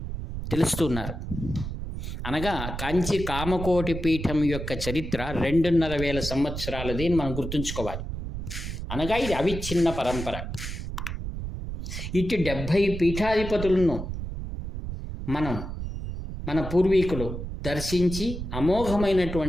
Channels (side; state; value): right; noise; rumble, 6 dB below the sound